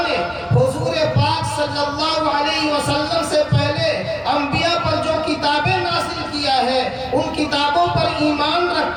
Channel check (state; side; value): identical; both; correlation 1.00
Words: نے حضور پاک صلی اللہ علیہ وسلم سے پہلے انبیاء پر جو کتابیں نازل کیا ہے ان کتابوں پر ایمان